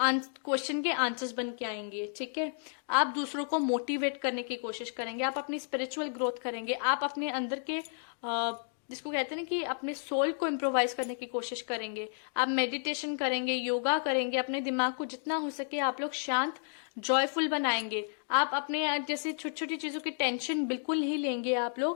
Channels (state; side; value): silent; right; digital silence